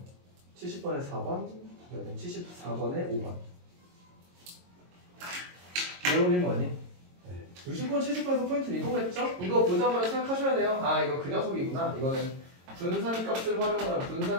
70번에 4번, 그다음에 74번에 5번. 이해올린 거 아니? 네. 60번, 70번에서 포인트는 이거겠죠? 이거 보자마자 생각하셔야 돼요. 아, 이거 그 녀석이구나. 이거는 분산값을 활용하라.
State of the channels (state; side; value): late; left; 22 ms